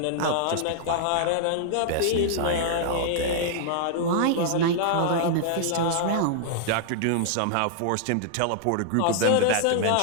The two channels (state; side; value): different; both; correlation -0.01